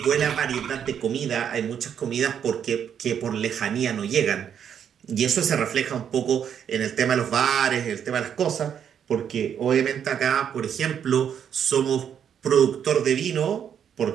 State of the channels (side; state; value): left; quieter; 8.5 dB